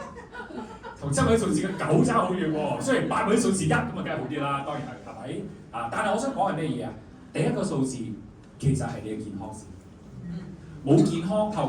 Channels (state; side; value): identical; both; correlation 1.00